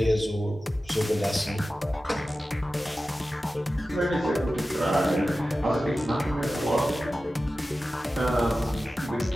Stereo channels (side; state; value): both; normal; correlation 0.95